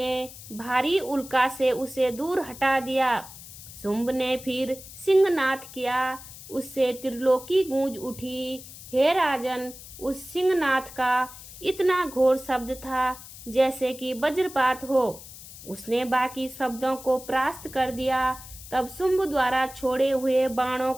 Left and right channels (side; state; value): left; noise; hiss, 16 dB below the sound